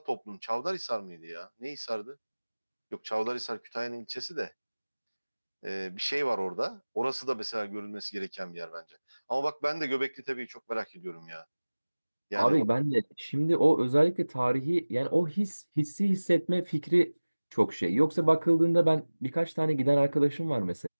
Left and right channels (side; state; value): both; inverted; correlation -1.00